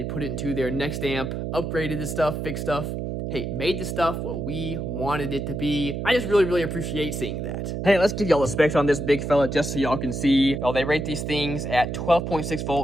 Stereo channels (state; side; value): noise; right; hum, 4 dB below the sound